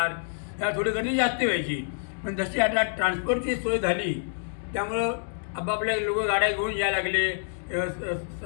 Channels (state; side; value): silent; right; digital silence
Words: ह्या थोडी गर्दी जास्त व्हायची. पण जशी आता ट्रान्सपोर्टची सोय झाली त्यामुळं आपापल्या लोक गाड्या घेऊन यायला लागले.